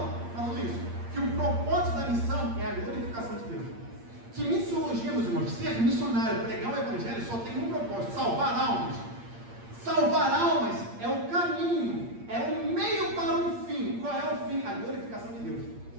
falando isso, que o propósito da missão é a glorificação de Deus. Que missiologia, meus irmãos, ser missionário, pregar o evangelho, só tem um propósito: salvar almas. Salvar almas é o caminho, é o meio para um fim. Qual é o fim? A glorificação de Deus.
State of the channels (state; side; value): late; left; 8.6 ms